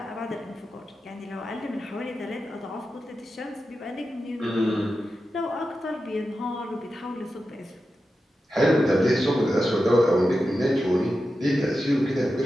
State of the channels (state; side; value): normal; both; correlation 0.91